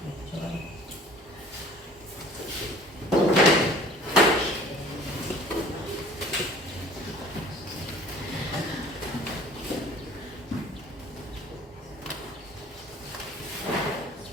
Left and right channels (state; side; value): normal; both; correlation 0.49